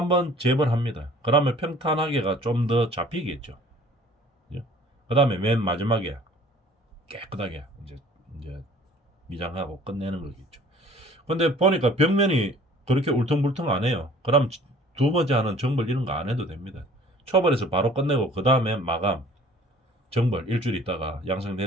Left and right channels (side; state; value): both; normal; correlation 0.51